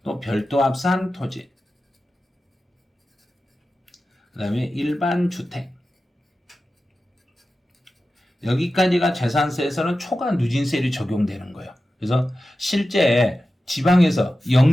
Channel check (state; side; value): normal; both; correlation 0.93